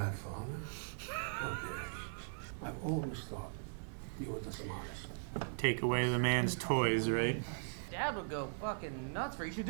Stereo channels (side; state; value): left; silent; 52 dB below the other